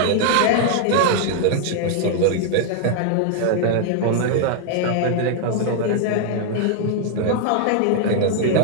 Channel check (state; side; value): different; both; correlation 0.00